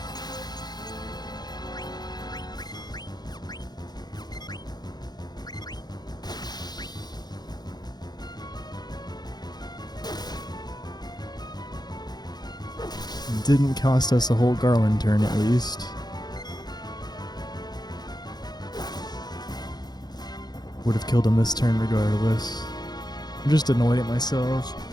Didn't cost us a whole Garland turn at least. Would have killed him this turn regardless. I'm just annoyed at myself.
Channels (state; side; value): late; right; 0.20 ms